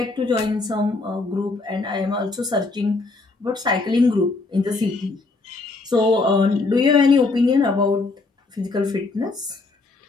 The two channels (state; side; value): quieter; right; 3.6 dB